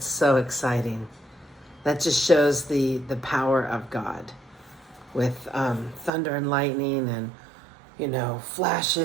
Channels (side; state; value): left; drops out; at 6.1 s